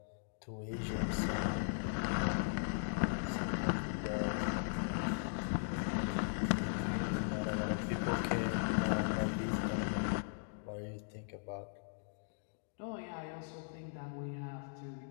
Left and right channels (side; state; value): right; silent; digital silence